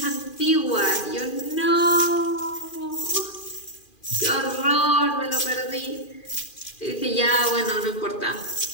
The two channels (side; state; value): right; late; 2.4 ms